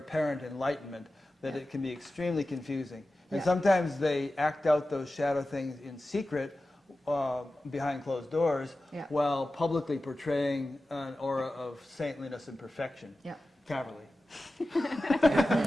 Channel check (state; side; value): normal; both; correlation 0.94